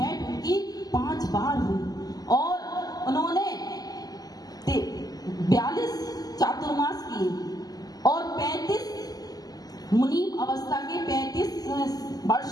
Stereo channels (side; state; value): right; late; 0.18 ms